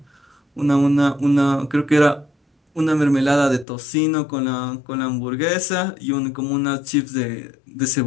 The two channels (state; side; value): drops out; right; at 3.7 s